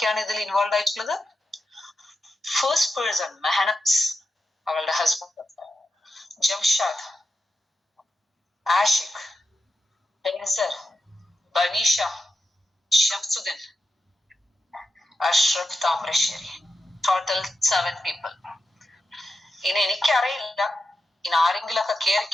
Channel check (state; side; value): normal; both; correlation 0.88